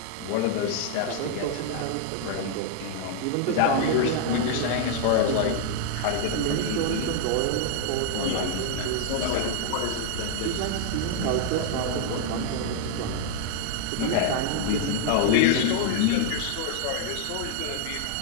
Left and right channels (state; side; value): different; both; correlation 0.00